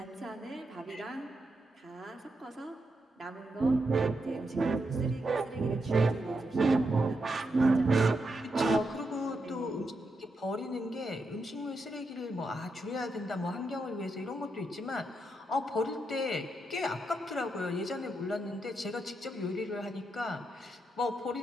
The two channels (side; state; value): both; normal; correlation 0.83